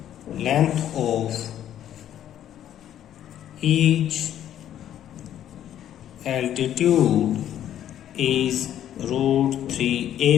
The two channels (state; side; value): quieter; right; 11.0 dB